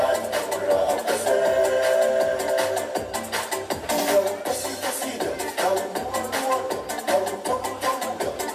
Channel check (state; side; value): identical; both; correlation 1.00